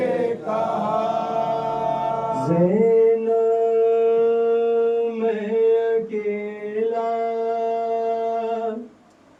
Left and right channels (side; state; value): both; identical; correlation 1.00